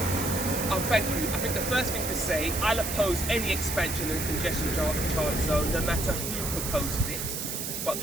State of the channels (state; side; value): noise; right; hiss, 4 dB below the sound